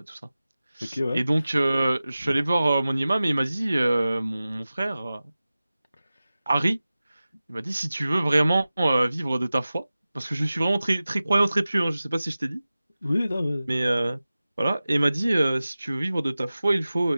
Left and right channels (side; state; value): both; inverted; correlation -0.96